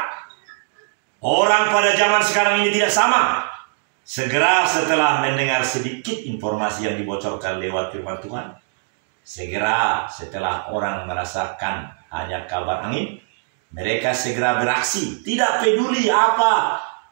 Orang pada zaman sekarang ini tidak sama. Segera setelah mendengar sedikit informasi yang dibocorkan lewat firman Tuhan, segera setelah orang merasakan hanya kabar angin, mereka segera beraksi. Tidak peduli apa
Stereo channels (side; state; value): left; silent; digital silence